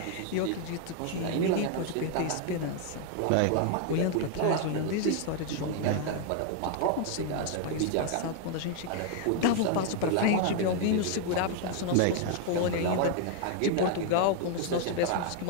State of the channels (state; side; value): different; both; correlation 0.00